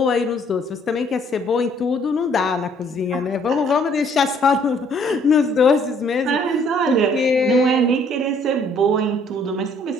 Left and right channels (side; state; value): both; normal; correlation 0.62